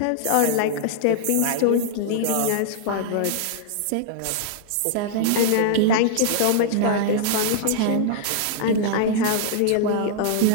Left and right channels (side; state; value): both; different; correlation -0.01